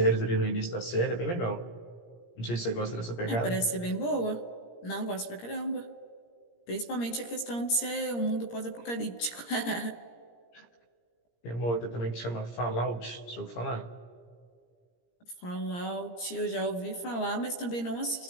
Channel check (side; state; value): right; late; 17 ms